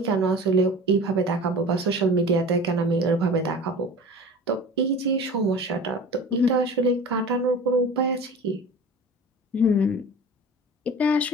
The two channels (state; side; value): normal; both; correlation 0.38